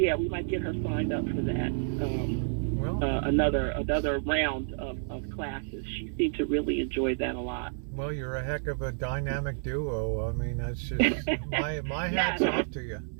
get her signed up for that. Another round of classes. She seemed to really enjoy that a lot. Well, you're a heck of a dynamic duo. I mean, that's just my hat's off to you.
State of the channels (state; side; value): silent; left; digital silence